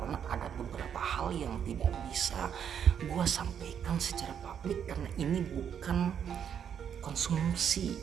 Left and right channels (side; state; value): left; quieter; 8.4 dB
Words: ada beberapa hal yang tidak bisa gue sampaikan secara publik karena ini bukan konsumsi